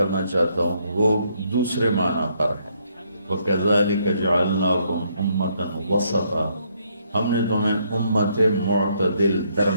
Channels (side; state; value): both; inverted; correlation -0.72